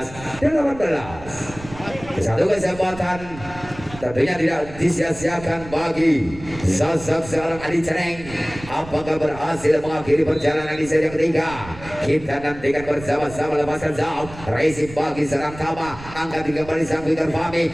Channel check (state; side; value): noise; right; rumble, 15 dB below the sound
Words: Satu kesempatan tentunya tidak disia-siakan bagi sosok seorang Adi Ceneng. Apakah berhasil mengakhiri perjalanan di seri yang ketiga? Kita nantikan bersama-sama. Lepaskan Zaf, Racing bagi serang Tama, angkat kembali sang Victor Fahmi,